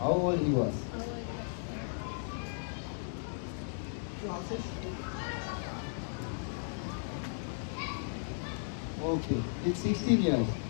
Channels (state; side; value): silent; right; digital silence